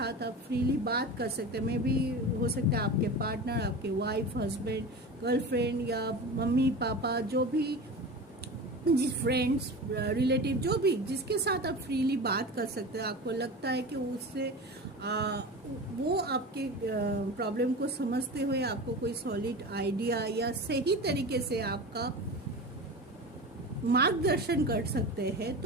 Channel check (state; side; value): normal; both; correlation 0.30